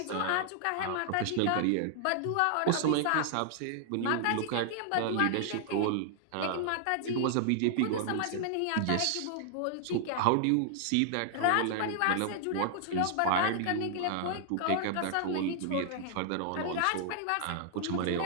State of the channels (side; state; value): both; different; correlation -0.01